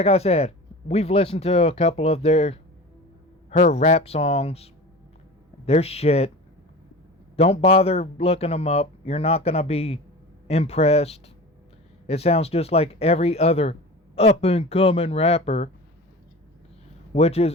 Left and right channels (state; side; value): normal; both; correlation 0.34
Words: I said, we've listened to a couple of her rap songs. They're shit. Don't bother looking them up. You're not gonna be impressed. It sounds just like every other up and coming rapper. Which